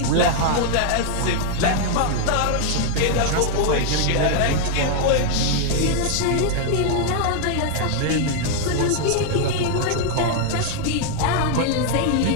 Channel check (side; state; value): both; different; correlation 0.00